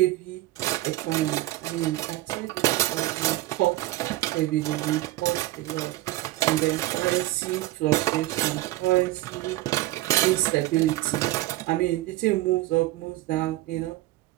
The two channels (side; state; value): left; quieter; 17.4 dB